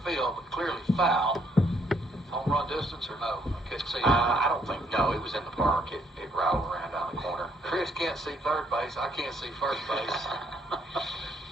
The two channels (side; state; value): both; normal; correlation 0.69